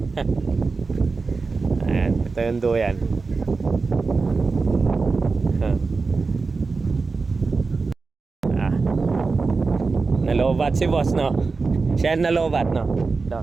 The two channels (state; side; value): quieter; left; 4.3 dB